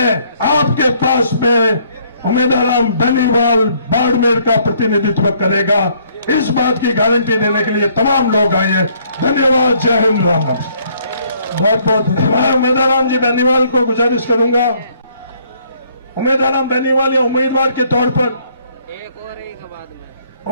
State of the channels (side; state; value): both; inverted; correlation -0.64